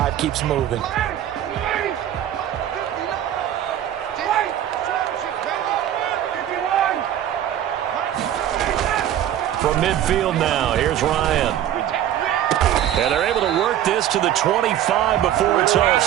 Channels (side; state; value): left; quieter; 11.3 dB